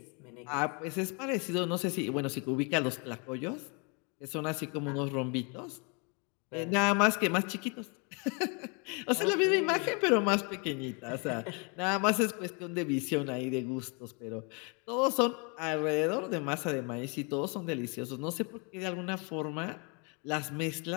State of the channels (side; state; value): right; quieter; 33.8 dB